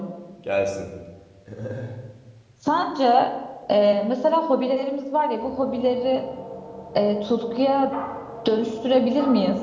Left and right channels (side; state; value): both; identical; correlation 1.00